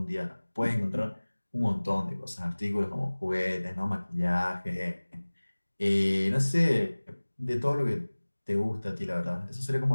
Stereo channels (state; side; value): inverted; both; correlation -1.00